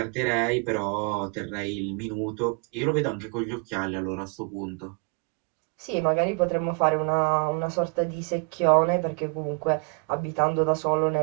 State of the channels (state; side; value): quieter; left; 36.4 dB